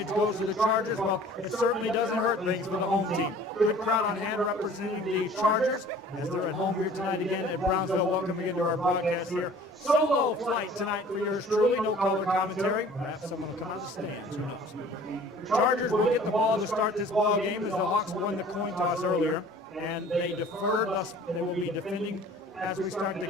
goes to the Chargers? Well, it certainly doesn't hurt things for the home team. Good crowd on hand representing the Chargers as they're at home here tonight again at Brownsville. Welcome again to our broadcast here. Solo flight tonight for yours truly. No color commentary. Perhaps someone will come out of the stands. Who knows? Chargers will get the ball to start this ball game as the Hawks won the coin toss earlier, and they deferred. Thus, they will be defending. As we start the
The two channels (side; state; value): both; normal; correlation 0.49